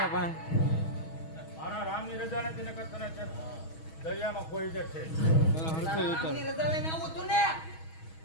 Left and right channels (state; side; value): late; right; 6.2 ms